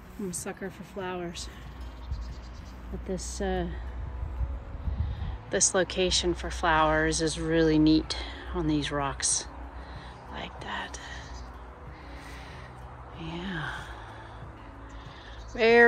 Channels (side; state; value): both; identical; correlation 1.00